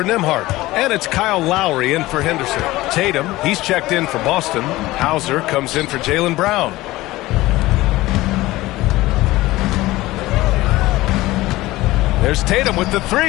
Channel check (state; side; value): quieter; right; 18.2 dB